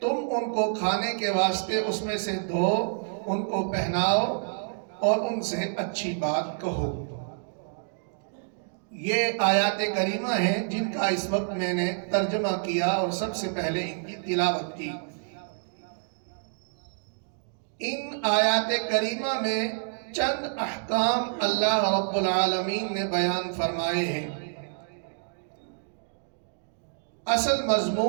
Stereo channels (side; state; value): left; silent; digital silence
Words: تم ان کو کھانے کے واسطے اس میں سے دو، ان کو پہناؤ اور ان سے اچھی بات کہو۔ یہ آیات کریمہ ہیں جن کا اس وقت میں نے ترجمہ کیا اور سب سے پہلے ان کی تلاوت کی۔ ان آیات کریمہ میں چند احکام اللہ رب العالمین نے بیان فرمائے ہیں۔ اصل